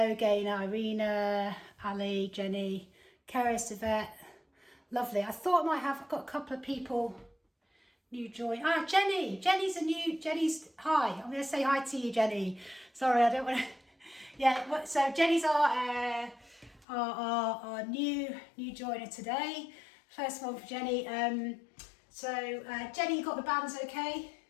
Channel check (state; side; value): drops out; right; at 16.9 s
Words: Gaynor, Irina, Ali, Jenny, Keris, Yvette. Lovely. I thought I might have, I've got a couple of people new join. Ah, Jenny. Jenny's, hi. I'm going to say hi to you, Jenny. Sorry, I don't want to. Yeah, so Jenny's our new joiner today. First one for Jenny. Jenny, you got the bands okay?